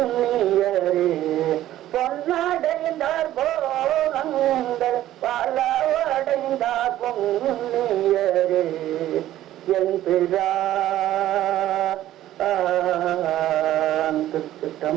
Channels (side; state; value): left; quieter; 13.6 dB